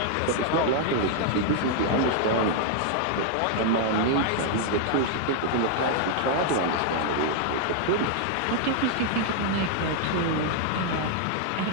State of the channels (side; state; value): both; different; correlation 0.00